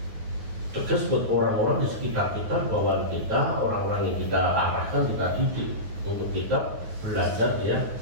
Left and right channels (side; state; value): left; late; 9.5 ms